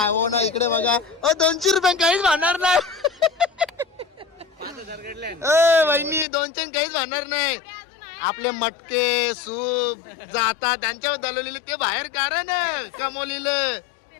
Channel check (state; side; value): drops out; right; at 6.2 s